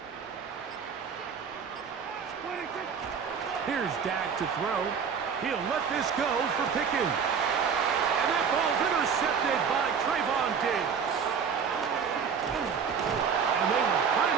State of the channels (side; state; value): left; quieter; 6.6 dB